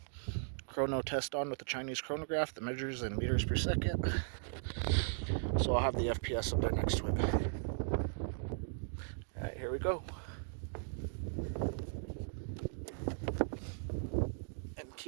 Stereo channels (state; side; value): silent; left; digital silence